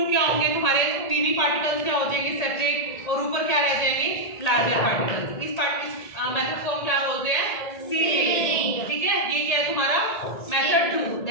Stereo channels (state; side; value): late; right; 1.8 ms